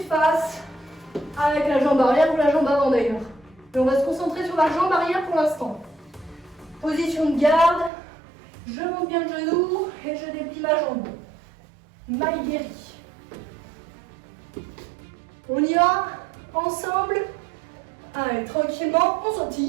face avec la jambe arrière ou la jambe avant d'ailleurs. Et on va se concentrer sur la jambe arrière pour l'instant. Position de garde. Je monte bien le genou et je déplie ma jambe. Maigiri. On y va ensemble. Allez, tranquillement, on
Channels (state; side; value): drops out; left; at 7.9 s